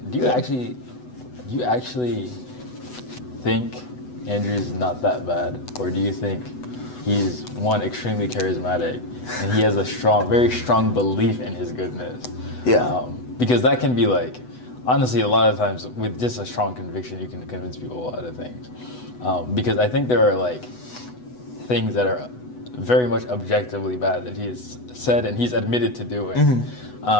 Do you actually think Andrew's not that bad, or do you think he's one extremely charismatic and he has a very strong belief in his goodness? Yeah. Because that can be like, honestly, a lot of times with just a strong conviction, you can convince people a lot of things. Because I think there are like things that are very much objectively bad that he has said and he's admitted to doing.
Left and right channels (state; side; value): late; right; 8.1 ms